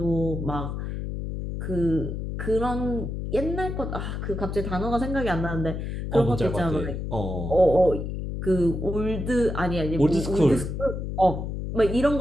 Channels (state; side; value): noise; left; hum, 4 dB below the sound